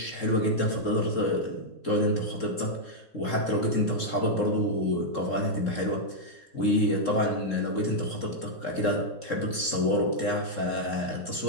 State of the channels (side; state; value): right; late; 3.7 ms